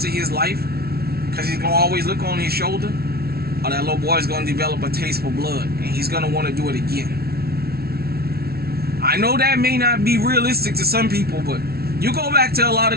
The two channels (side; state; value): left; late; 0.45 ms